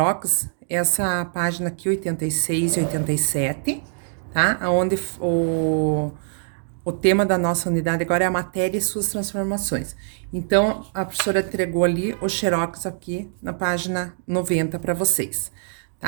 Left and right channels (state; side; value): silent; left; digital silence